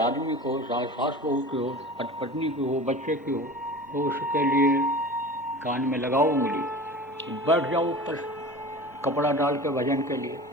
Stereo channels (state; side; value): normal; both; correlation 0.36